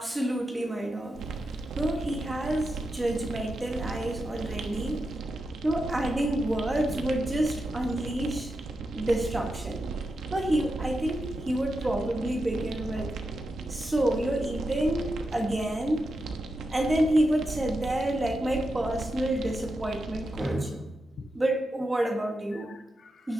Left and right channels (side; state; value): both; normal; correlation 0.88